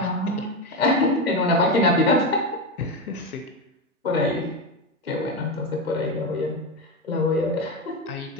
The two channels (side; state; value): both; normal; correlation 0.14